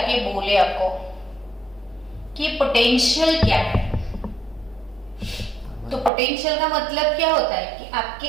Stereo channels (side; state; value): left; drops out; at 6.1 s